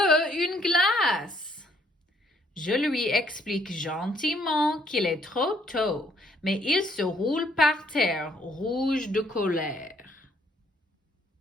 une glace. Je lui explique gentiment qu'il est trop tôt, mais il se roule par terre, rouge de colère.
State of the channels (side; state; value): both; normal; correlation 0.67